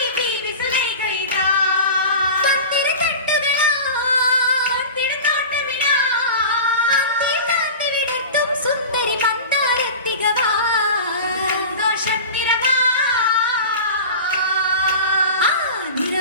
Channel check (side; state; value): both; inverted; correlation -0.33